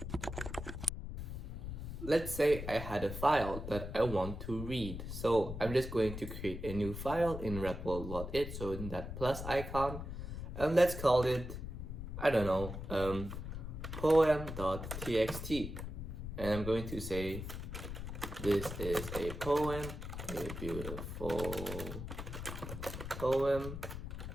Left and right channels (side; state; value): left; noise; rumble, 7 dB below the sound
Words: Let's say I had a file that I want to read. So I'm just going to create a new file in REPL.it, so in that plus icon, and let's call it, I don't know, poem.txt. And I'm going to say, this is a poem, a beautiful poem,